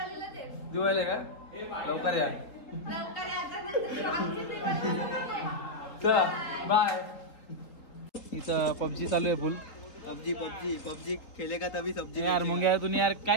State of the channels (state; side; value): late; right; 3.6 ms